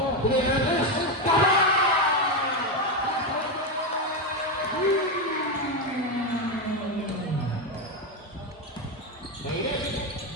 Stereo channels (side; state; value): both; normal; correlation 0.10